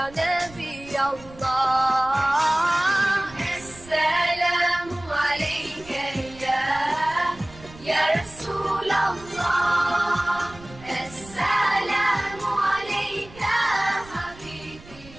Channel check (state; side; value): noise; right; rumble, 20 dB below the sound